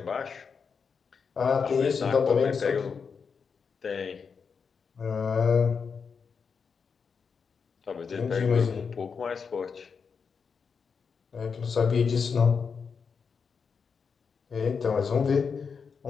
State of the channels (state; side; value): quieter; right; 5.8 dB